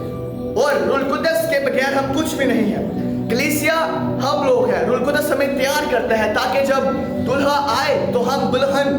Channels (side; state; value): both; identical; correlation 1.00